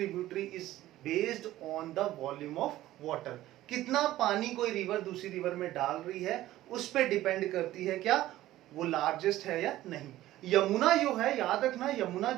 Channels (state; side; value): quieter; left; 15.0 dB